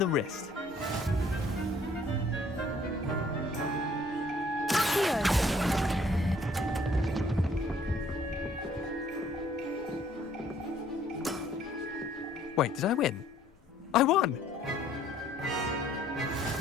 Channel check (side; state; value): both; normal; correlation 0.61